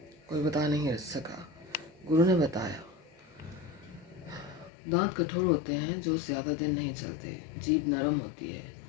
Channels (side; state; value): right; drops out; at 4.7 s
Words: कोई बता नहीं सका. गुरु ने बताया, दांत कठोर होते हैं जो ज़्यादा दिन नहीं चलते. जीभ नरम होती है,